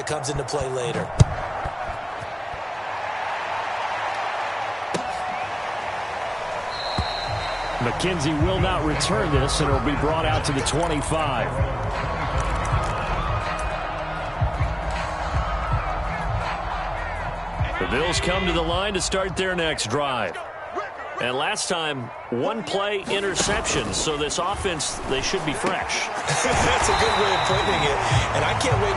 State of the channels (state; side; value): identical; both; correlation 1.00